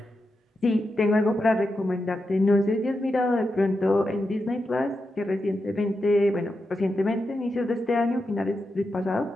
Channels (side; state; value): both; normal; correlation 0.87